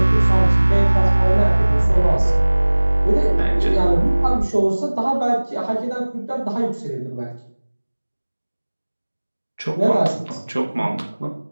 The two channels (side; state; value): both; inverted; correlation -1.00